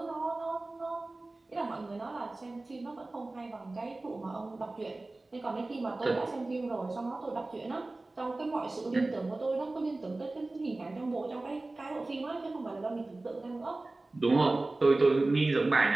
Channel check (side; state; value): left; quieter; 3.0 dB